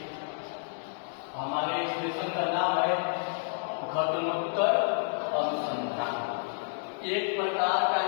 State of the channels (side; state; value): right; silent; digital silence